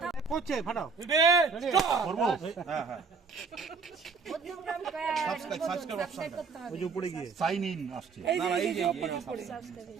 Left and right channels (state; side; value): quieter; left; 5.0 dB